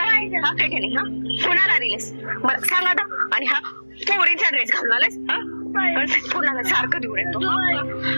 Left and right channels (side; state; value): both; inverted; correlation -1.00